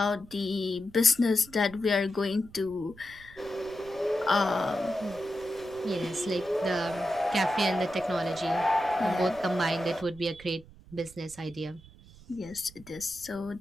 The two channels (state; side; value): noise; right; rumble, 21 dB below the sound